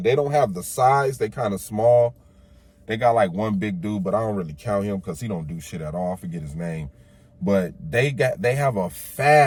They don't have the size. They kind of small. They got like one big dude, but I don't really count him because he don't do shit at all. I forget his name. But they have a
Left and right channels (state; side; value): identical; both; correlation 1.00